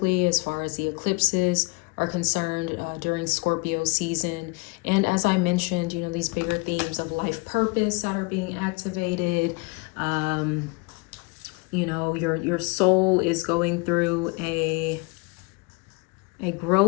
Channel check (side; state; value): right; quieter; 27.8 dB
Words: as far as the eclipses are concerned during Scorpio season. And as I mentioned, you know, these bigger themes of life purpose that are being activated. You know, your soul is going through a